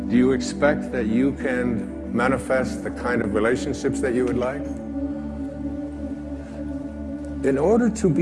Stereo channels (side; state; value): both; identical; correlation 1.00